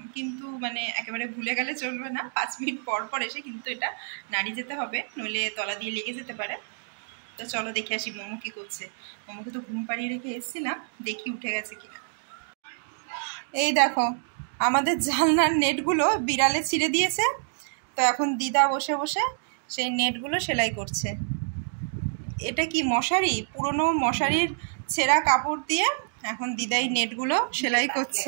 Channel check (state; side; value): silent; left; digital silence